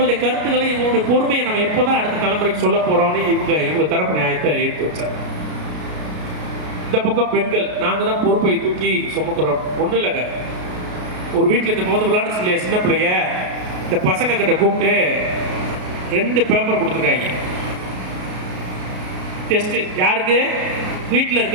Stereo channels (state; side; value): late; left; 33 ms